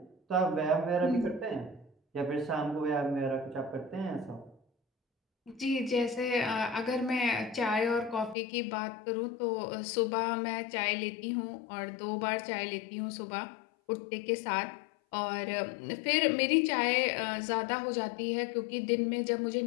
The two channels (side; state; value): right; drops out; at 8.3 s